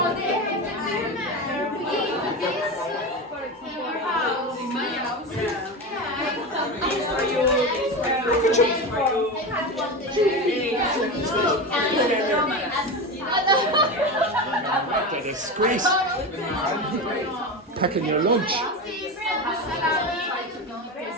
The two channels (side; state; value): both; normal; correlation 0.22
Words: What a disgrace. Packing your lunch.